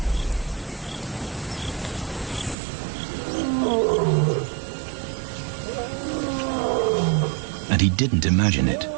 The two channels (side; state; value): left; drops out; at 2.6 s